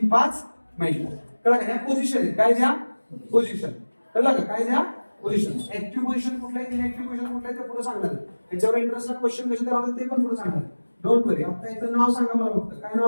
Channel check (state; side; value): inverted; both; correlation -1.00